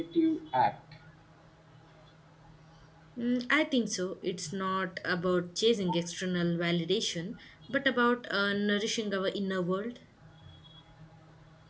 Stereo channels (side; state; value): both; identical; correlation 1.00